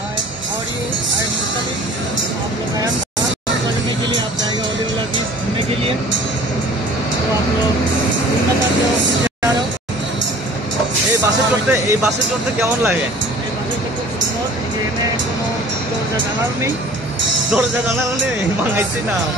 के लिए आप जाएगा ओलीवाला बीच घूमने के लिए, तो आप लोग घूमना चाहते हो जा रहे हो। এই বাসে চড়তে কেমন লাগে? এই বাসে খুব সুন্দর, এখানে কোনো দরজা জানালা নেই, মাঙাইছি না।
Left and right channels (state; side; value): normal; both; correlation 0.47